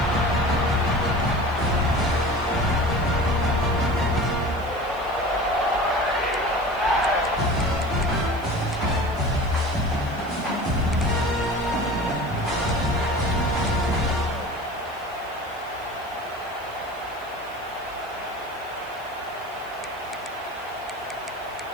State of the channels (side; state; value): right; noise; hiss, 24 dB below the sound